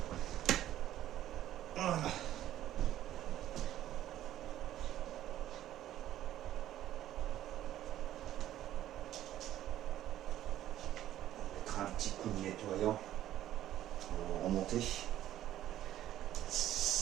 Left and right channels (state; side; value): quieter; left; 12.8 dB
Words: Voilà. On mettra un petit coup de nettoyant pour remonter.